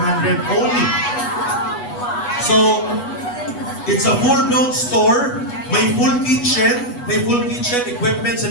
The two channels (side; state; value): right; late; 8.2 ms